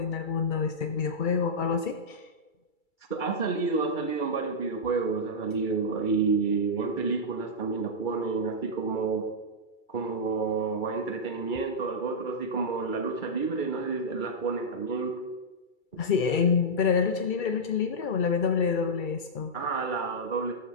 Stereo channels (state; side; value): late; right; 2.3 ms